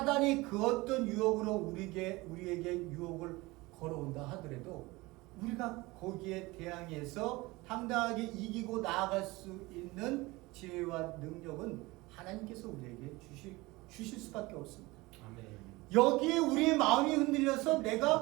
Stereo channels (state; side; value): quieter; left; 21.8 dB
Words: 그 어떤 유혹으로 우리에게 유혹을 걸어온다 하더라도 우리가 거기에 대항해서 당당하게 이기고 나아갈 수 있는 지혜와 능력은 하나님께서 우리에게 주실 수밖에 없습니다. 아멘. 여기에 우리의 마음이 흔들려서